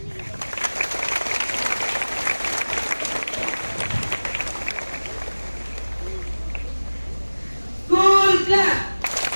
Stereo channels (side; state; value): both; inverted; correlation -1.00